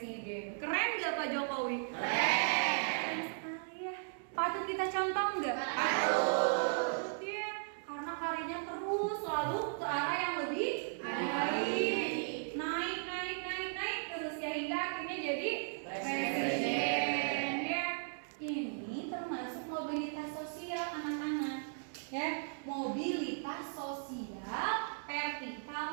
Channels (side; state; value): left; silent; 53 dB below the other